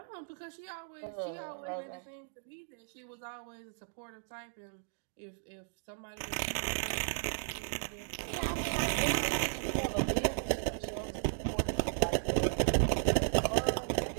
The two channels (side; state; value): left; silent; digital silence